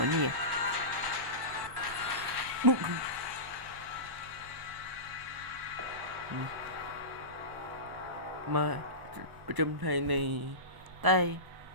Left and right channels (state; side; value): late; left; 1.1 ms